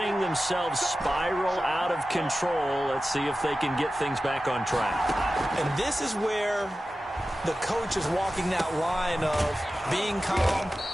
themselves spiral out of control. Let's see if they can get things back on track. And this is where the coach is walking that line of being calm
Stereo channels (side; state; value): both; normal; correlation 0.94